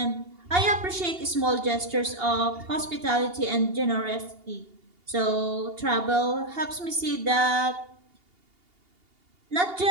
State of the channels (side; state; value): left; late; 2.8 ms